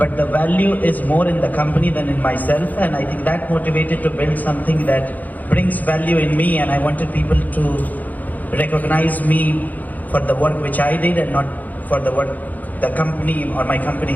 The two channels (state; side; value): late; right; 0.081 ms